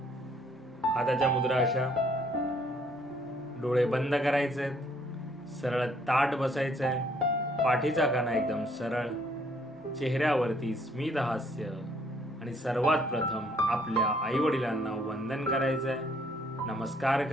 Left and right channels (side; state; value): both; normal; correlation 0.65